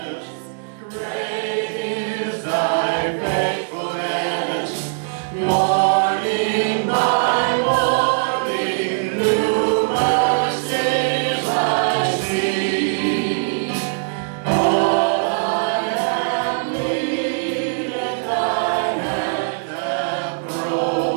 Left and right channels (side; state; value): left; silent; digital silence